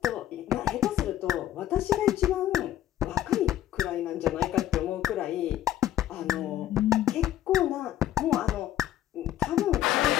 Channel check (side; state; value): right; quieter; 12.7 dB